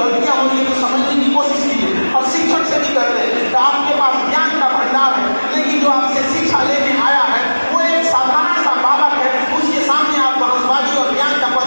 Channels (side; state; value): both; inverted; correlation -1.00